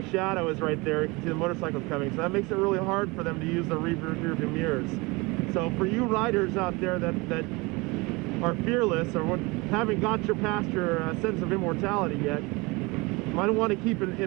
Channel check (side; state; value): left; quieter; 25.2 dB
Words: shadow is right there. You can see the motorcycles coming. So that makes it really hard for them to use the rear view mirrors. So for you riders out there that are fearless or haven't got past your sense of immortality yet, you might want to keep